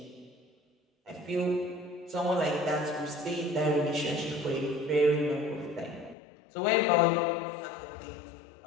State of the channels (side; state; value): right; drops out; at 6.2 s